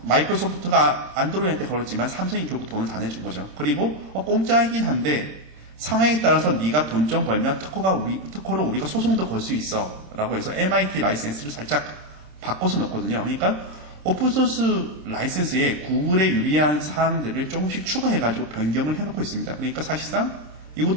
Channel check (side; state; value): left; late; 26 ms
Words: 마이크로소프트가 안드로이드한테 걸었지만 삼성이 결국 돈을 다 내준 거죠. 그리고 공짜이긴 한데 상황에 따라서 네가 돈 좀 벌면 특허로 우리가 소송도 걸 수 있어 라고 해서 MIT 라이센스를 살짝 바꿔서 넣거든요. 그러니까 오픈소스 라이센스에 구글에 유리한 사항들을 조금씩 추가해가지고 변경을 해놓고 있습니다. 그러니까 사실상